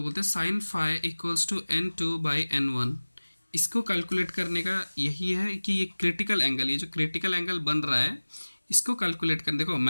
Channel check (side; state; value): both; inverted; correlation -1.00